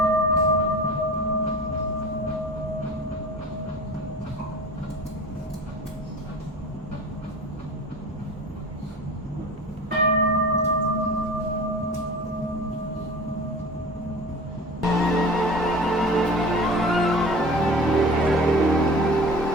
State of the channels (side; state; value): both; normal; correlation 0.37